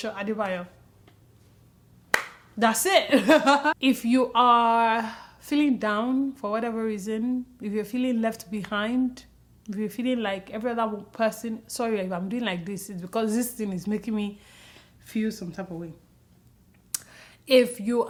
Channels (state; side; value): identical; both; correlation 1.00